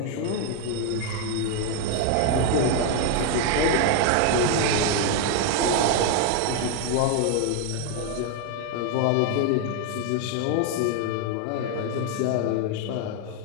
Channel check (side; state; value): both; different; correlation 0.01